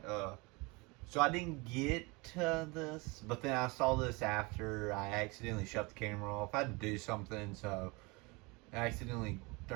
So I didn't get to this, but then I saw this after I accidentally shut the camera off. I had to do something, so I accidentally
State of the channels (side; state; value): left; quieter; 26.5 dB